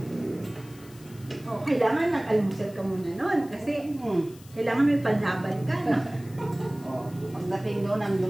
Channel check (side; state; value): left; noise; hiss, 23 dB below the sound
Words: Kailangan nag-almusal ka muna noon kasi kailangan may panlaban ka, no? Pagdating doon, nang